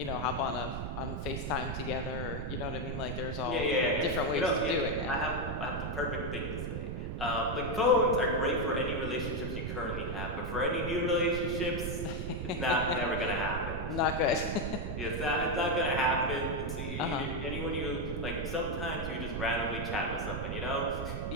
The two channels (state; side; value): noise; right; rumble, 4 dB below the sound